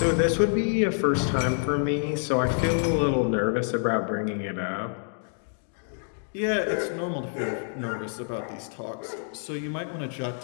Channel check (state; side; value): silent; right; 60 dB below the other